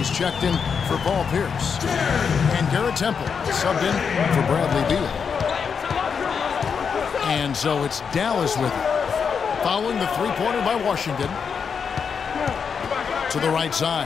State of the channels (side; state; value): right; quieter; 6.3 dB